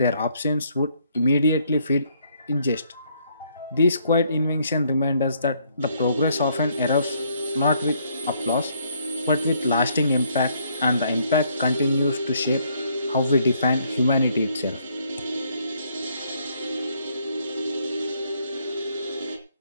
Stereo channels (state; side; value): inverted; both; correlation -0.69